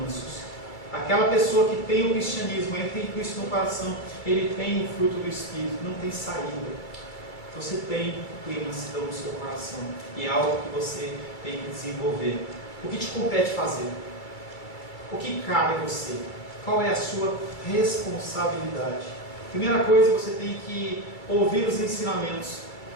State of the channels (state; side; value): late; right; 2.3 ms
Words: mansos. Aquela pessoa que tem o cristianismo, ele tem Cristo no coração, ele tem o fruto do Espírito, não tem saída. Você tem mansidão no seu coração e é algo que você tem que desenvolver. O que te compete fazer? O que cabe a você? Qual é a sua responsabilidade? Primeira coisa, você tem que ouvir os ensinamentos.